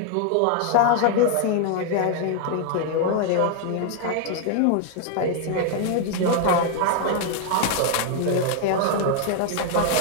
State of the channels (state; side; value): different; both; correlation 0.00